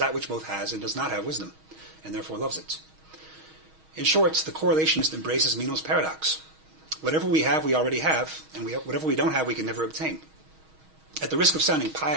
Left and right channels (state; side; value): late; left; 6.3 ms